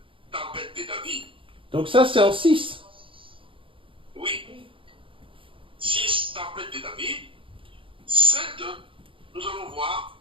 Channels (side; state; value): left; late; 0.25 ms